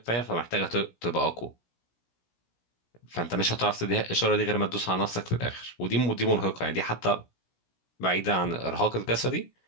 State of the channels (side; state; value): right; late; 17 ms